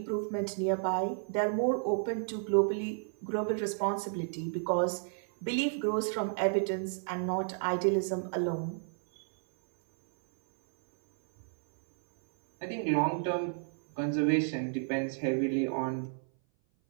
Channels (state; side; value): silent; left; 57 dB below the other